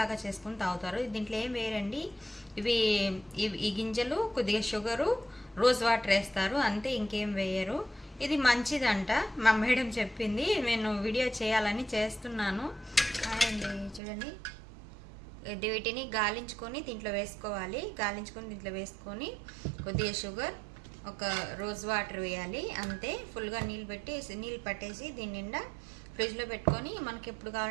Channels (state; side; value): drops out; left; at 14.0 s